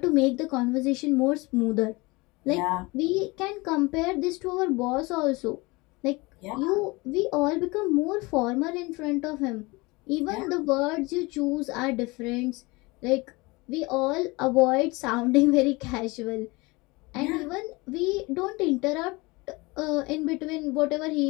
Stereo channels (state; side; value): quieter; right; 24.2 dB